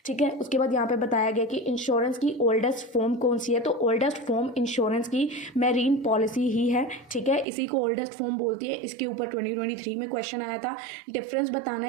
ठीक है, उसके बाद यहाँ पे बताया गया कि इंश्योरेंस की ओल्डेस्ट फॉर्म कौन सी है, तो ओल्डेस्ट फॉर्म इंश्योरेंस की मैरीन पॉलिसी ही है। ठीक है, इसी को ओल्डेस्ट फॉर्म बोलती है। इसके ऊपर 2023 में क्वेश्चन आया था, डिफरेंस बताना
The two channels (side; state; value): left; drops out; at 7.5 s